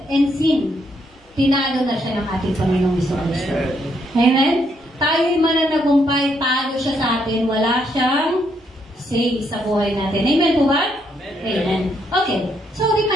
and sin. Tinalo na siya ng ating Panginoong Jesucristo. Amen? Tayo'y mananagumpay, talo siya sa atin. Wala siyang say sa buhay natin. Amen po ba? Amen. Okay. So,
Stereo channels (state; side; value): normal; both; correlation 0.75